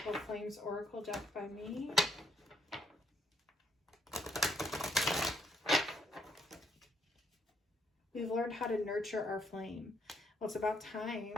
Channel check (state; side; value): normal; both; correlation 0.72